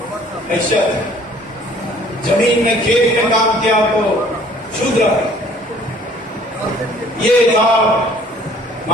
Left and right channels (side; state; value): both; normal; correlation 0.56